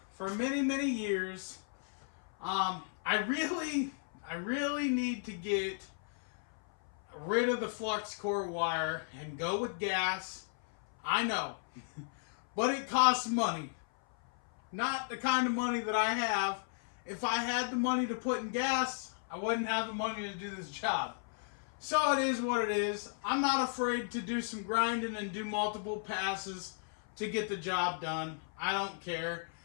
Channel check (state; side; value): silent; right; 55 dB below the other